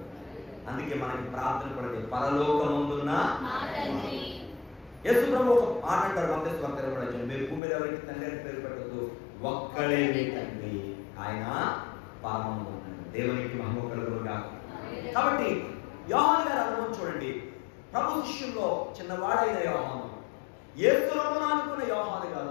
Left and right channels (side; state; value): right; drops out; at 7.6 s